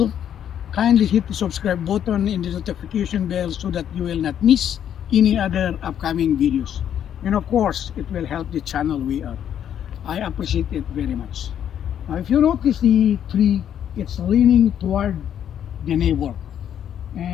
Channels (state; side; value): quieter; right; 9.6 dB